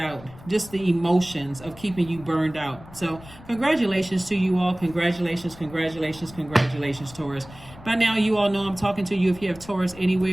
Just the emotions of keeping you burned out. So congratulations to you all. Congratulations, congratulations, congratulations, Taurus. By now, you all know I'm talking to you if you have Taurus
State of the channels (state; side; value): noise; left; rumble, 19 dB below the sound